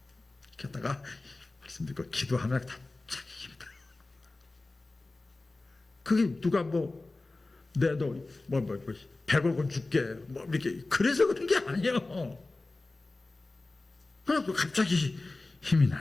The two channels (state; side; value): quieter; right; 3.2 dB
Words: 이렇게 하다가 말씀 듣고 기도하면 다 자기 힘들어. 그게 누가 내너 100억 원 줄게 이렇게 그래서 그런 게 아니에요. 그냥 갑자기 힘이